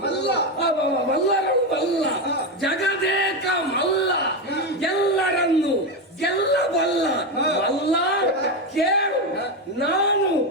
ಮಲ್ಲ ಮಲ್ಲರಳು ಮಲ್ಲ ಜಗದೇಕ ಮಲ್ಲ ಎಲ್ಲರನ್ನು ಗೆಲ್ಲಬಲ್ಲ ಮಲ್ಲ ಕೇಳು. ನಾನು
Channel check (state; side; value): normal; both; correlation 0.12